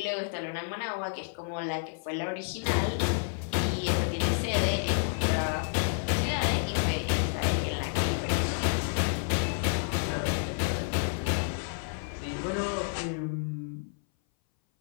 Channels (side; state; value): right; silent; 58 dB below the other